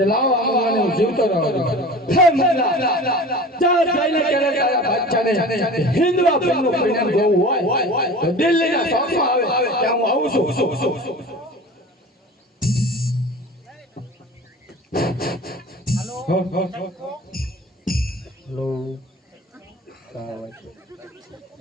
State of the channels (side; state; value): both; normal; correlation 0.38